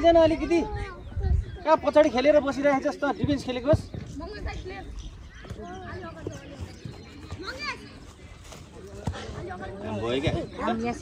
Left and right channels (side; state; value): both; identical; correlation 1.00